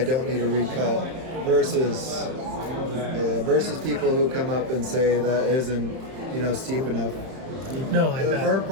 don't need to recut, versus people who come up and say that isn't, steep enough. No, I bet.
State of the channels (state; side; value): late; left; 31 ms